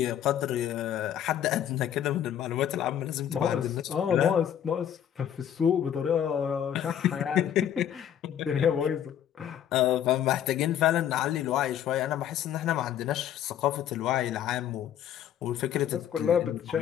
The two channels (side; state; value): right; quieter; 10.0 dB